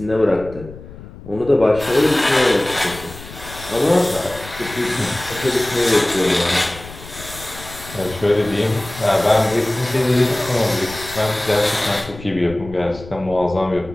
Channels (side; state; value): left; noise; rumble, 16 dB below the sound